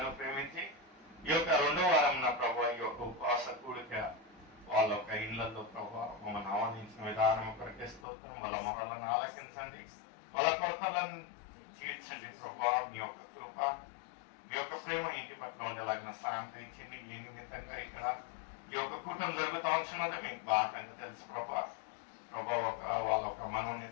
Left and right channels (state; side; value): drops out; right; at 8.1 s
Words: ప్రేమించి ఈ యొక్క 2వ వారం నా ప్రభావ ఈ యొక్క ఉపవాస కూడిక వాళ్ళ యొక్క ఇళ్లలో ప్రభావ మమ్మల్ని ఆహ్వానించిన విధానం కొరకే స్తోత్రం. వాళ్ళ మొరలను ఆలకించండి, వాళ్ళ కొరతలను తీర్చండి ప్రభావ. మీ యొక్క కృప, మీ యొక్క ప్రేమ ఇంటి పట్ల ఉండేలాగిన సాయం తెచ్చింది. మీ నిమిత్తంగా ఇక్కడ ఈ యొక్క కూటమి జరుగుతూ ఉంటున్నది మీకు బాగా తెలుసు ప్రభా. వాళ్ళ ఒక